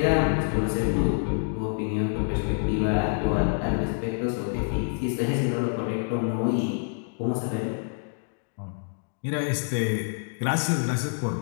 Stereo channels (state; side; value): silent; right; 60 dB below the other